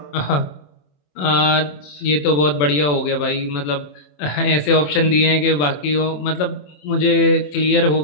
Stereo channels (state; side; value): late; right; 27 ms